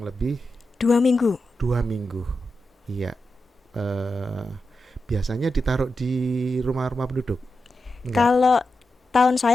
lebih 2 minggu. 2 minggu. Iya, eh, biasanya ditaruh di rumah-rumah penduduk? Enggak. Kalau tahun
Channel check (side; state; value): both; normal; correlation 0.89